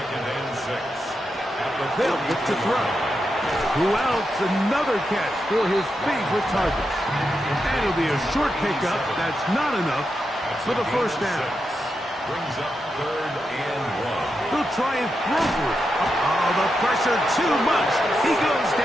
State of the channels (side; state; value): both; normal; correlation 0.86